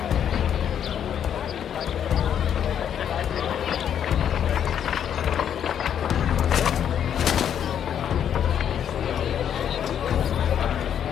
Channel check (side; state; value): right; quieter; 9.1 dB